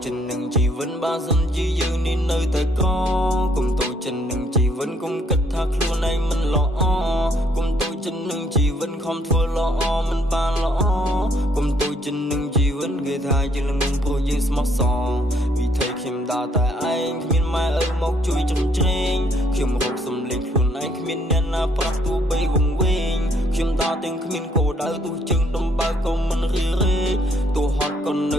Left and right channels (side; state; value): both; normal; correlation 0.68